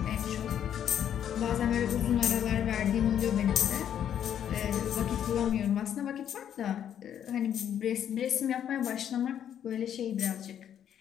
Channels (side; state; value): right; quieter; 9.6 dB